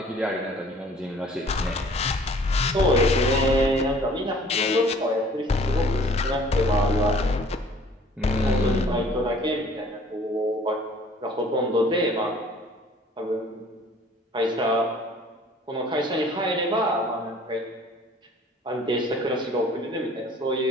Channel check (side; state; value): both; normal; correlation 0.53